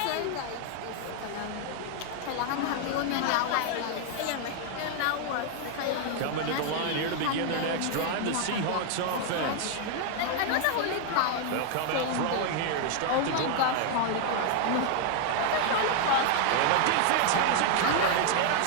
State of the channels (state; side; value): different; both; correlation 0.00